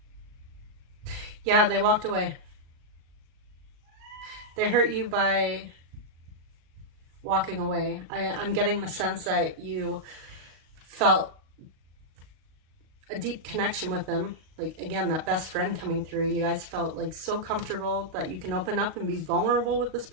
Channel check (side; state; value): left; late; 38 ms